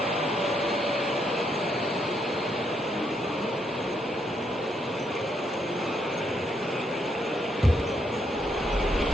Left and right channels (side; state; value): both; normal; correlation 0.76